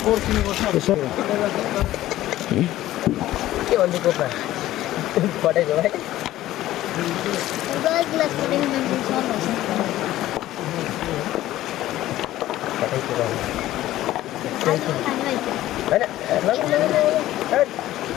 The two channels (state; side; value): quieter; right; 14.7 dB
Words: के भन्छ कोपा पटेको भाइ गल ग्लास पटेको मान्छे